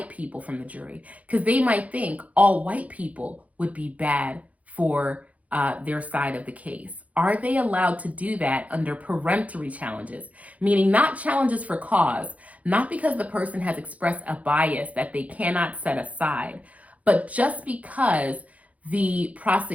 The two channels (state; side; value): late; left; 0.069 ms